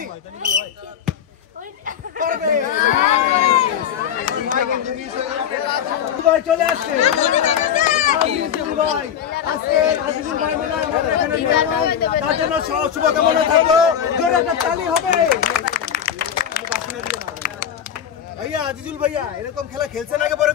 পারবে ভাই চলে আসছে আজিজুল ভাই আজকে আজিজুল ভাই মনে হয় আমাদের এখানে মেহমান তার জন্য শুভকামনা থাকলো জোরে একটা তালি হবে ভাইয়া আজিজুল ভাইয়া এরকম খেলা খেলছেন আগে পরে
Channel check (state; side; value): quieter; right; 9.1 dB